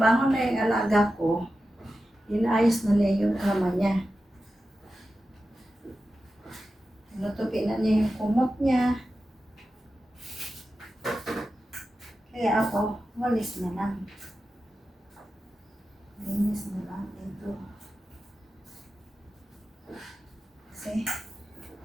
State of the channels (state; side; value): normal; both; correlation 0.92